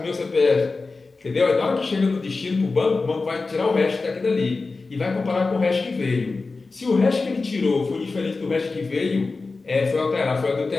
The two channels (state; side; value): quieter; right; 3.8 dB